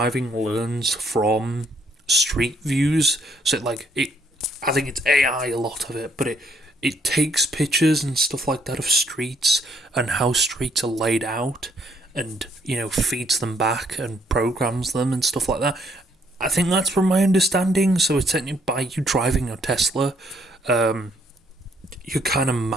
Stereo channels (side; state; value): both; normal; correlation 0.68